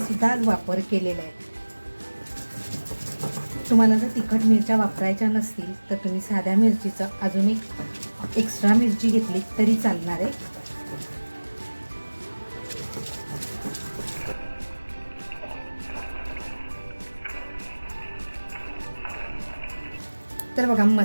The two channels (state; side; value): inverted; both; correlation -1.00